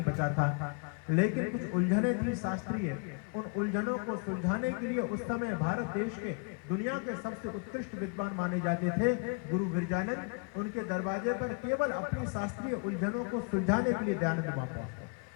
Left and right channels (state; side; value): quieter; right; 36.2 dB